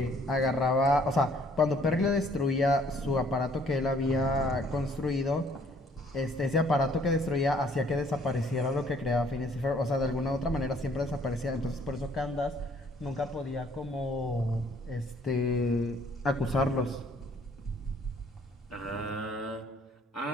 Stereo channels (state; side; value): normal; both; correlation 0.61